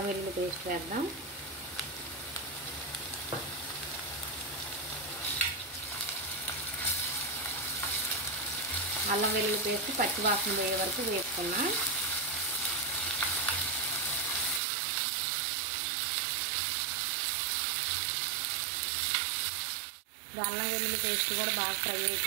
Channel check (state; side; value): drops out; left; at 14.6 s